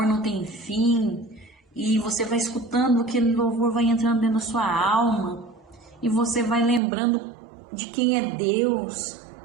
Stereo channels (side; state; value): left; drops out; at 6.8 s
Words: não tem fim. E você vai escutando, aquele louvor vai entrando dentro da sua alma, e você vai lembrando de quem é Deus,